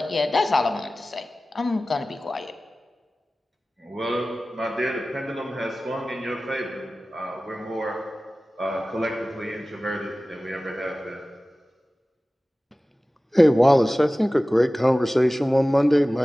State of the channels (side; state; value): both; normal; correlation 0.97